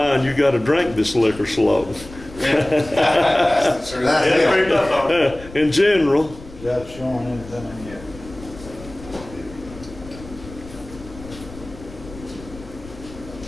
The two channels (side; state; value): left; noise; rumble, 17 dB below the sound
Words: you got to drink this liquor slow. That's pretty tough on it. In general. Is that showing anything in yet?